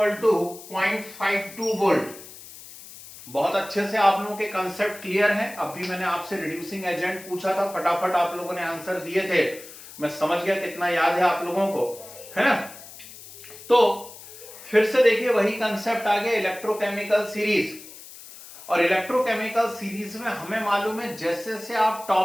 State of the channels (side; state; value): left; noise; hiss, 17 dB below the sound